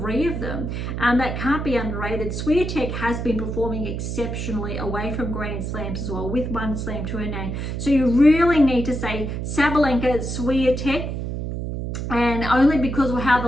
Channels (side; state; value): right; noise; hum, 4 dB below the sound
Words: of them. That can't be underrated. Swiatek has been performing exceptionally away from Grand Slams as well, with 1 slam to her name. So you really need to say Sabalenka, Swiatek, and only because of how